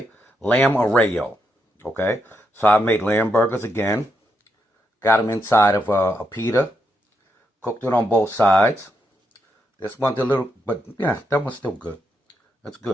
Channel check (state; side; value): normal; both; correlation 0.81